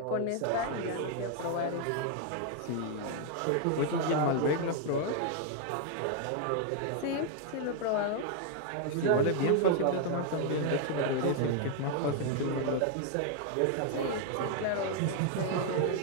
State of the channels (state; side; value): different; both; correlation 0.00